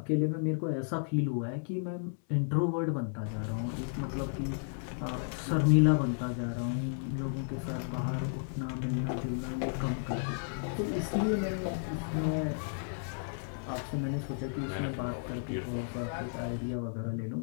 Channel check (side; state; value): right; silent; digital silence